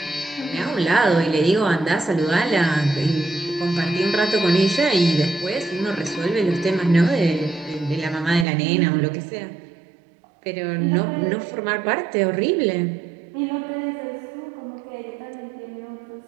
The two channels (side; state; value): left; drops out; at 8.5 s